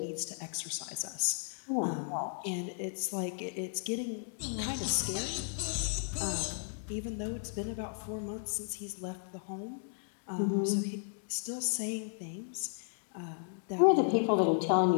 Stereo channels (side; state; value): right; silent; digital silence